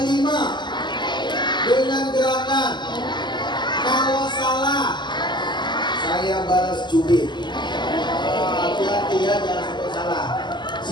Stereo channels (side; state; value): right; late; 0.21 ms